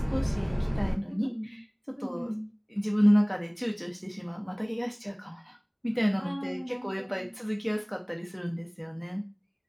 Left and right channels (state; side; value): identical; both; correlation 1.00